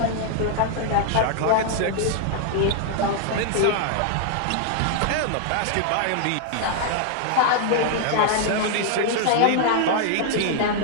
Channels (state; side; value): different; both; correlation 0.00